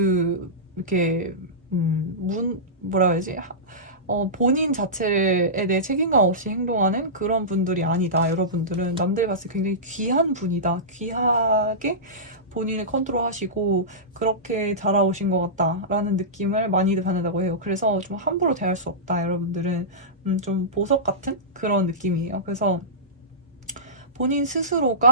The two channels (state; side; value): normal; both; correlation -0.18